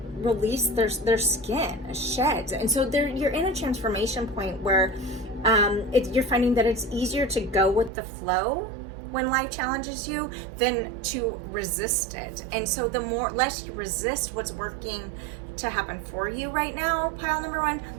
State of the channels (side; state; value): left; drops out; at 7.9 s